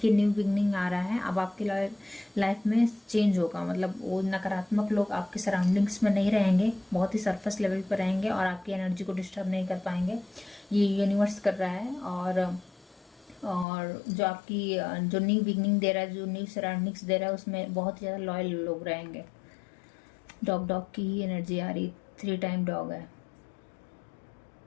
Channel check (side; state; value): right; drops out; at 13.7 s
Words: न्यू बिगनिंग आ रहा है। अब आपकी लाइफ में चेंज होगा, मतलब वो नकारात्मक लोग आपके सराउंडिंग्स में नहीं रहेंगे, बहुत ही सरफेस लेवल पर रहेंगे और आपकी एनर्जी को डिस्टर्ब नहीं कर पाएंगे। ये यूनिवर्स कर रहा है। और जो आपकी जो न्यू बिगनिंग दे रहा है, जो न्यू सराउंडिंग्स दे रहा है, उसमें बहुत ज़्यादा लॉयल लोग रहेंगे। डॉग की ही एनर्जी आ रही, 3 टाइम डॉग है।